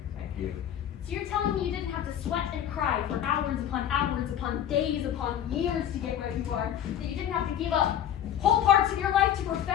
Thank you. So you're telling me you didn't have to sweat and cry for hours upon days upon years to get where you are? That you didn't have to give up whole parts of your life to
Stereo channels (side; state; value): right; quieter; 10.3 dB